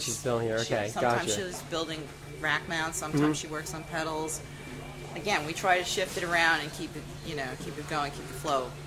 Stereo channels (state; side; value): identical; both; correlation 1.00